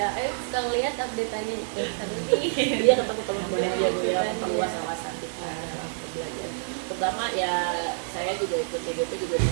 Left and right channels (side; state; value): left; silent; digital silence